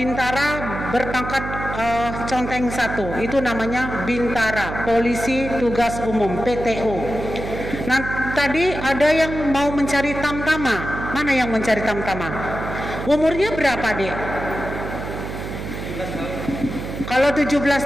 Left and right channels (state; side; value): noise; right; hum, 7 dB below the sound